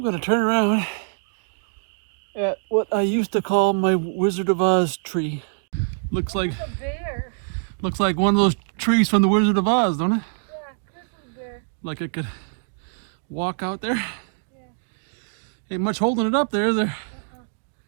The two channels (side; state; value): left; silent; digital silence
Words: going to turn around at what I used to call my Wizard of Oz tree. Looks like one of those trees from the Wizard of Oz, don't it? Yeah, this is there. Like I could walk out there. Yeah. Ain't much holding it up there, is there?